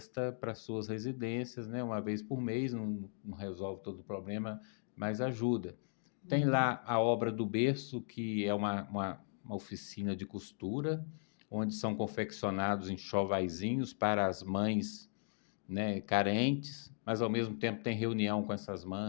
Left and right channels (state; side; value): silent; right; digital silence